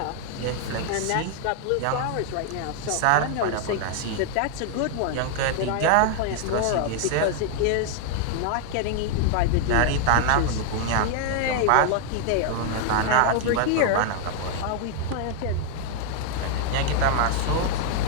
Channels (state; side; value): different; both; correlation 0.00